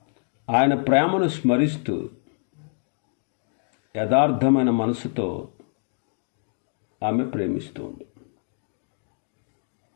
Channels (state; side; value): silent; right; 61 dB below the other